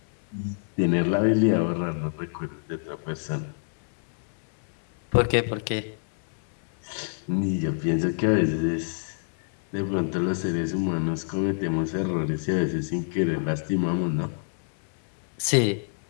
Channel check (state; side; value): silent; right; 60 dB below the other